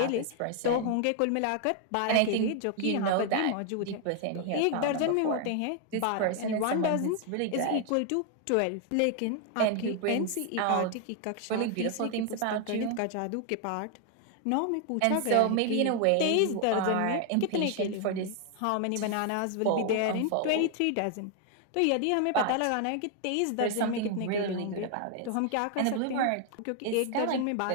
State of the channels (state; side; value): different; both; correlation 0.00